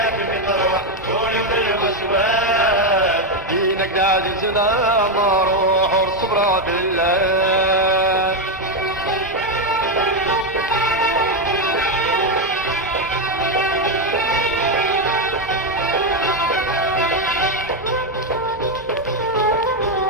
مطروح قولوا للوزواس دينك عزيزنا مروح وصبرا بالله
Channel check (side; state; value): both; normal; correlation 0.06